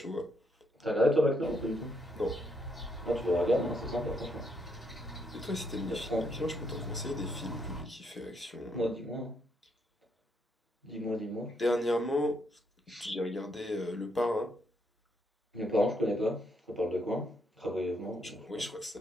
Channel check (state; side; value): normal; both; correlation 0.75